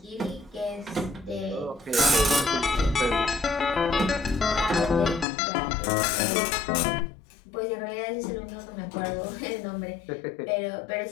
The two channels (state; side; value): drops out; right; at 5.2 s